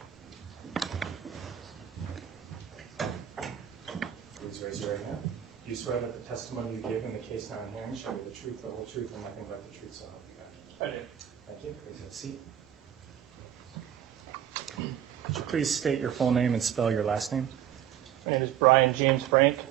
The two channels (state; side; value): quieter; left; 10.1 dB